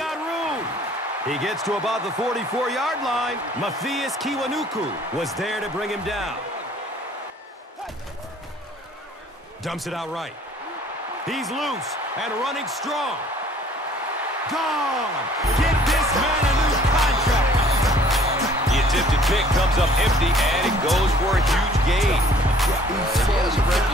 room. He gets to about the 44-yard line. Matthias Kiwanuku was there to bring him down. Dumps it out right. He's loose and running strong. Gone. Get this man a new contract. The attempted pick comes up empty, and it goes for a huge gain. He has a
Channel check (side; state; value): both; normal; correlation 0.56